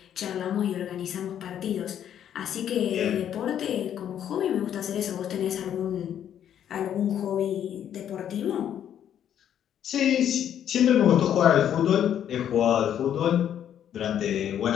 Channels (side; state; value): right; quieter; 9.9 dB